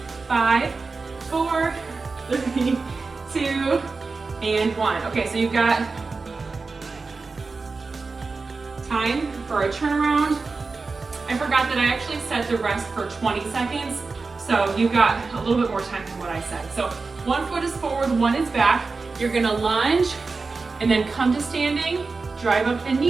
5, 4, 3, 2, and 1. Okay, so you've got time for a turnaround. I forgot that I actually set the rest for 20 seconds, so you've got a little bit more time than what I said. So 1 foot is forward, 1 is back. You're gonna lunge and then come to standing, drive up the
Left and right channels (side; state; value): left; quieter; 4.1 dB